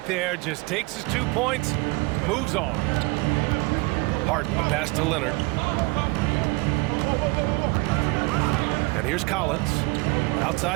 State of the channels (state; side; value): quieter; left; 24.5 dB